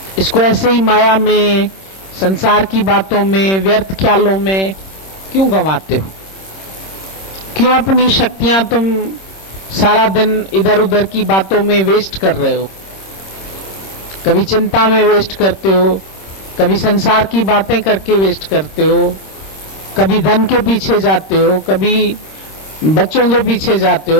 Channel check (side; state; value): right; late; 26 ms